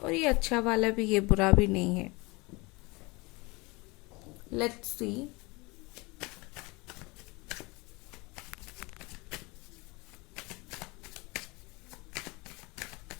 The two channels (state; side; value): quieter; right; 25.3 dB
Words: ये अच्छा वाला भी है, बुरा भी नहीं है। Let's C.